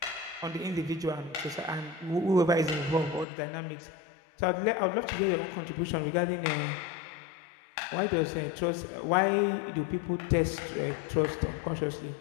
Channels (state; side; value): drops out; right; at 3.2 s